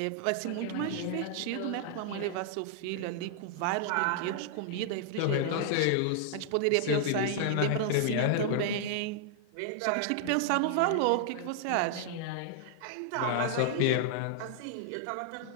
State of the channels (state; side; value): different; both; correlation -0.01